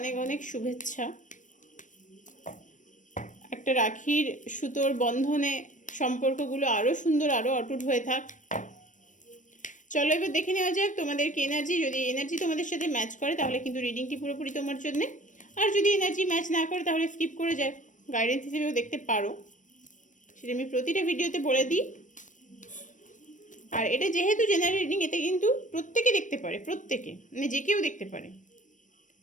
অনেক শুভেচ্ছা। একটা রাখির সুতোর বন্ধনে সম্পর্কগুলো আরও সুন্দর, আরও অটুট হয়ে থাক। চলো এবার দেখে নেওয়া যাক তোমাদের কি এনার্জি। যদি এনার্জি তোমাদের সাথে ম্যাচ করে তাহলে কিন্তু রিডিংটি পুরোপুরি তোমার জন্যে, আর যদি এনার্জি ম্যাচ না করে তাহলে স্কিপ করে যায়, গাইডেন্স হিসেবেও দেখতে পারো, সেটা আমি প্রতিটা ভিডিওতে বলে দিই। আর এটা যেহেতু জেনারেল রিডিং, এতে কিন্তু প্রত্যেকে দেখতে পারে, প্রত্যেকে মানে যে কেউ দেখতে পারে,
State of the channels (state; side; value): late; right; 0.37 ms